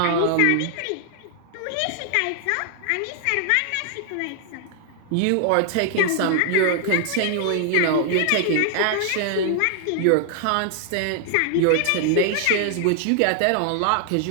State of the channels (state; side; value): different; both; correlation 0.00